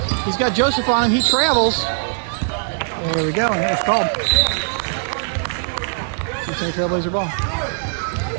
He's got Joseph on him. He travels. There we go, and it was called. Cincinnati Trailblazer ball.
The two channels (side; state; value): left; silent; digital silence